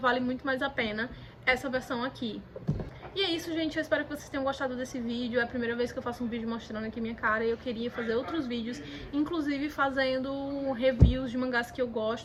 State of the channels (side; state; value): both; identical; correlation 1.00